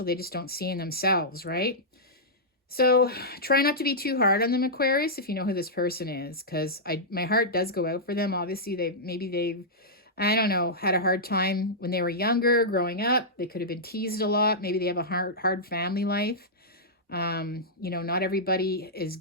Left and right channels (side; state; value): both; normal; correlation -0.11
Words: They just don't see in themselves, right? So try not to be too hard on them, Aquarius, if you know who this person is, because my heart does go out for them. Obviously, they've, I don't know, had a hard time when they were younger, growing up. They could have been teased a lot. Maybe they have a hard family life. Not everybody is